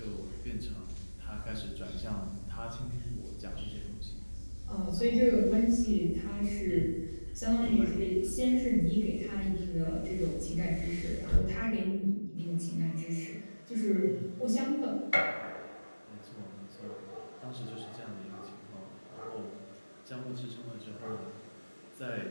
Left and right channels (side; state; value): both; inverted; correlation -1.00